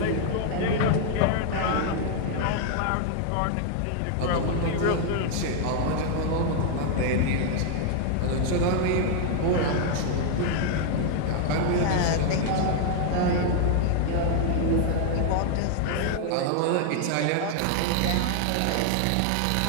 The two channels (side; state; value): both; different; correlation 0.00